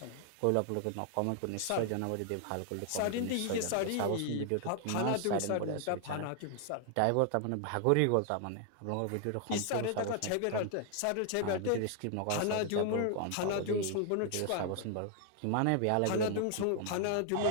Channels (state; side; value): different; both; correlation 0.00